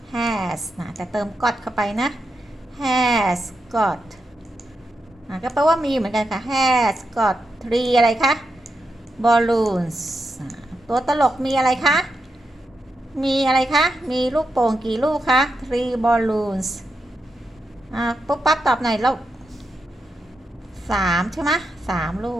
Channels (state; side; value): normal; both; correlation 0.86